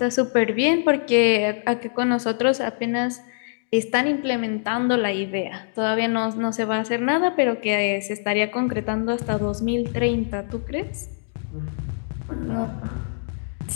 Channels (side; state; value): right; silent; digital silence